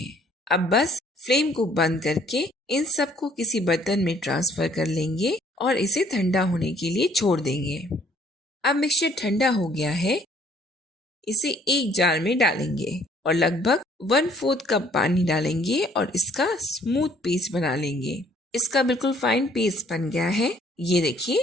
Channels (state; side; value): normal; both; correlation 0.61